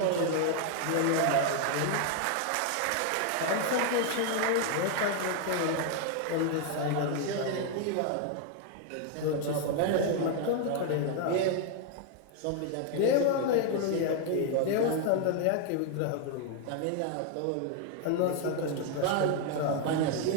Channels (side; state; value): both; different; correlation 0.00